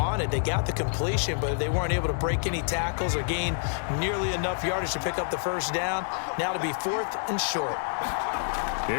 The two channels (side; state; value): right; silent; 60 dB below the other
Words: They got the completion, but they weren't able to break any tackles or gain nearly enough yardage to pick up the first down. Now to be 4th and short.